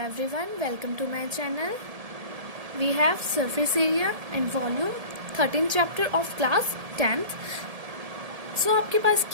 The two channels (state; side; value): late; left; 1.7 ms